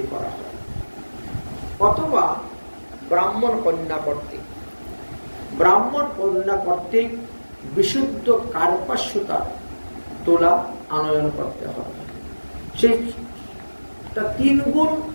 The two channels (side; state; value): both; inverted; correlation -1.00